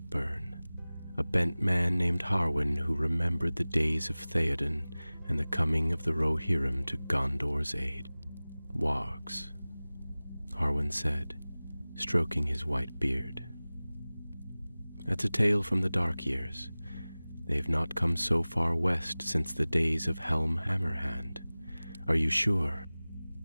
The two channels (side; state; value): both; inverted; correlation -0.99